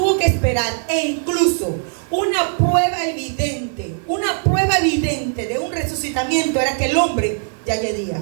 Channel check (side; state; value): left; silent; digital silence